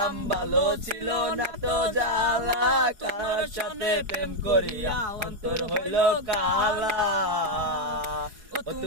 ভালো ছিল না তো জ্বালা, কার সাথে প্রেম করিয়া অন্তর হইল কালা। ও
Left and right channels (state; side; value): late; left; 4.8 ms